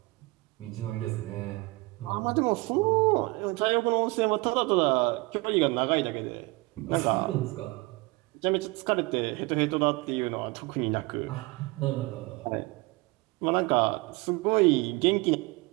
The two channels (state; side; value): quieter; left; 24.1 dB